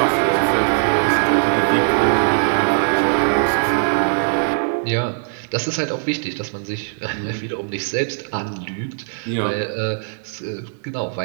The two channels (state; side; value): silent; left; digital silence